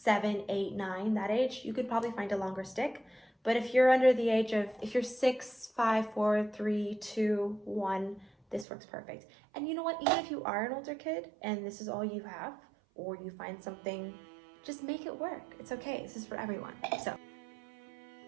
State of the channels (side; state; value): left; drops out; at 8.7 s